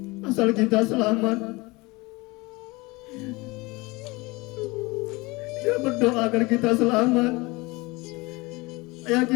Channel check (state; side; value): quieter; right; 23.7 dB